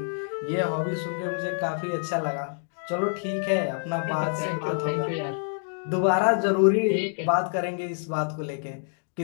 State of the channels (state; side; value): silent; right; 60 dB below the other